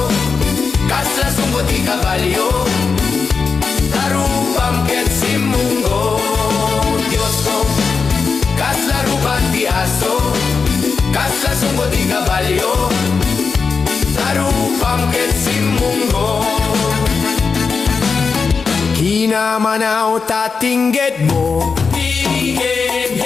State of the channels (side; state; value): right; quieter; 5.1 dB